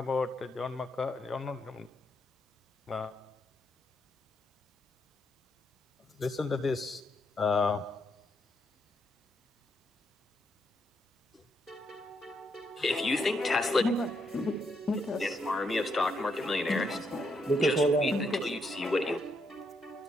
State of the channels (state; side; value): normal; both; correlation 0.77